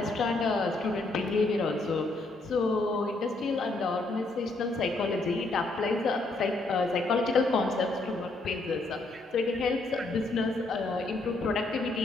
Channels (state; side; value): quieter; right; 3.1 dB